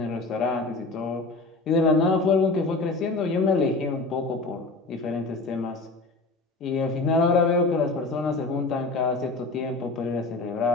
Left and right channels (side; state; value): right; quieter; 3.4 dB